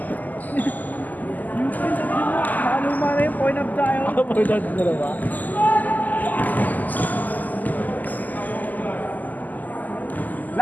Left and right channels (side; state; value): right; late; 0.082 ms